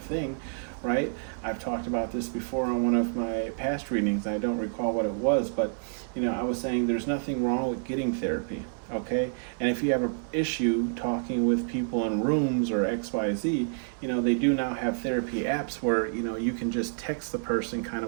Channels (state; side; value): silent; left; 59 dB below the other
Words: thing, right? I've talked about this before on one of my past readings. I don't recall what it was, but I was saying there's nothing wrong with getting therapy, okay? And if you have an issue talking with people in rooms or XYZ, they do now have therapy apps where, you can just text the person kind